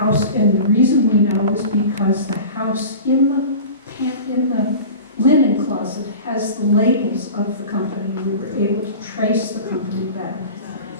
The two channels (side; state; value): both; inverted; correlation -0.37